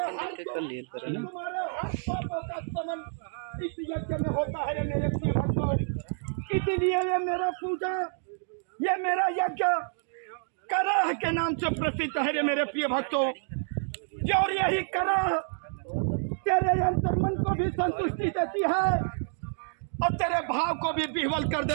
इस यज्ञ में होता है मेरे प्रिय भक्तों। इसीलिए ये मेरा पूजा, ये मेरा यज्ञ कराह के नाम से प्रसिद्ध है रे मेरे प्रिय भक्तों। और यही कराह तेरे अंतर्मन को भी संतुष्टि देती है और तेरे भाव को भी विह्वल कर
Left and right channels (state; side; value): silent; left; digital silence